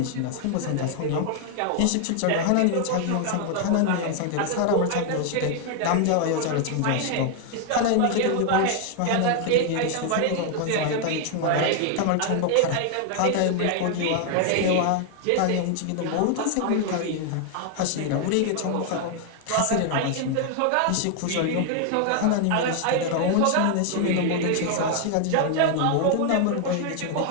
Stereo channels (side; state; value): both; different; correlation 0.00